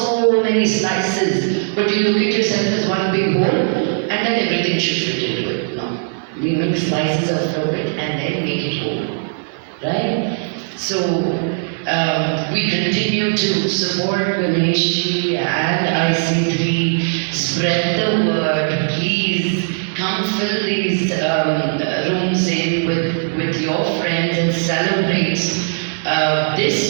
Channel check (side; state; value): left; silent; digital silence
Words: many slices, but you look at yourself as one big whole, and then everything should fit into it. No. We make slices of it and then make it whole. Right? So, we continue to support Ganeshji and IC3. Spread the word, please. Come fill these rooms in with your friends and celebrate